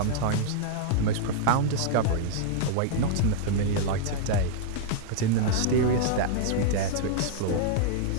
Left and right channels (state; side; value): different; both; correlation -0.01